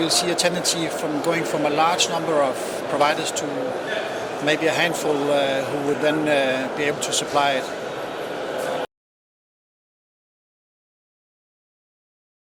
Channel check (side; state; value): both; identical; correlation 1.00